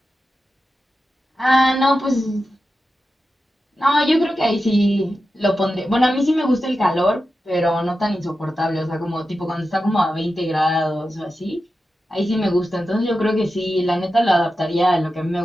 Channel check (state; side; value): normal; both; correlation 0.91